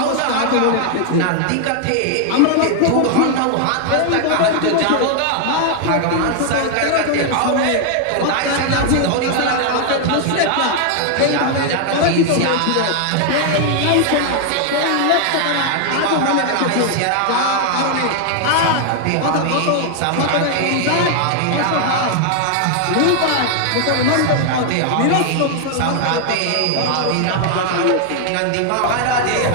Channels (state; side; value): different; both; correlation 0.00